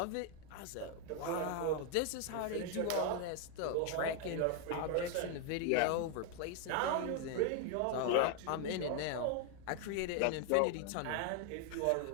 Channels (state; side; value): different; both; correlation 0.00